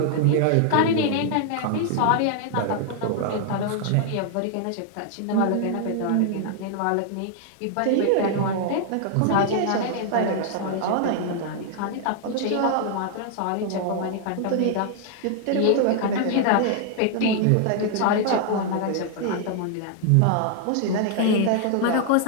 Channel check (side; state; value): both; different; correlation 0.00